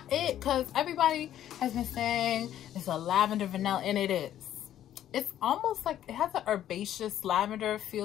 it, because everybody has been saying it's a lavender vanilla, and it is. It's almost like it has an herbaceous lavender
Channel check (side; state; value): right; quieter; 11.5 dB